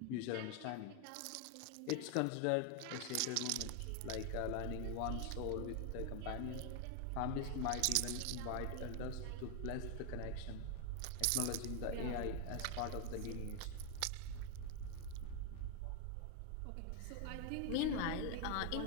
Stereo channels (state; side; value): different; both; correlation 0.00